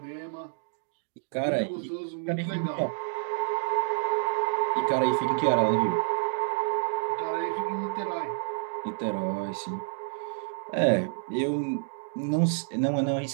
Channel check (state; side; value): silent; left; digital silence